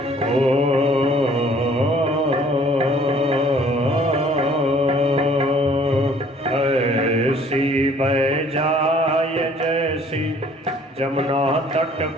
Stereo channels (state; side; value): normal; both; correlation 0.56